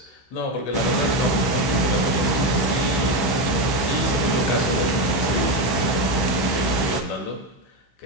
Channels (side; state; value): right; late; 15 ms